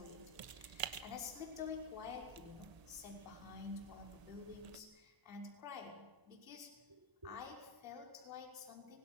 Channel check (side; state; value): left; late; 1.0 ms